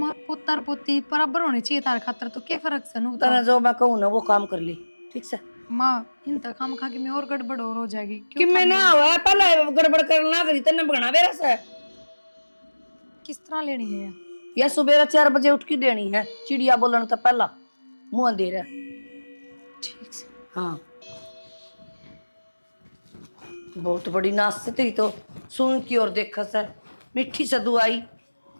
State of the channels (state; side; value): inverted; both; correlation -1.00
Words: पुत्र पुत्री बराबर होनी चाहिए तार खातर तो क्या फर्क से नू तना जो मैं कहूं ना वो काम कर ली ठीक से माँ इन तक हम खा के मैं और गड़बड़ और हो जाएगी कि मैं ना हुआ पहले गड़बड़ करना करी तने बगना बेरा से किस तरह लेनी है ये? या सुबह 4 बजे उठ के देनी है चिड़िया बोलन तो पहला मुंह अंधेरा ठीक से हाँ बहुत बड़ी नाश से तेरी तो सुन की और देखा सर मिठी से दुआई